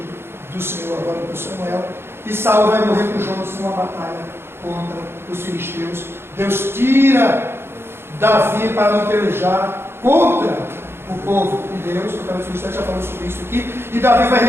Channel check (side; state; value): left; late; 0.11 ms